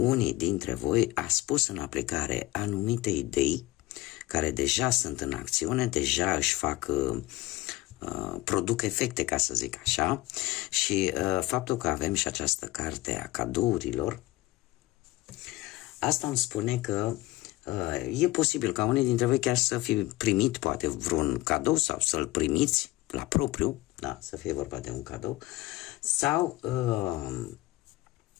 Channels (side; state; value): right; quieter; 18.7 dB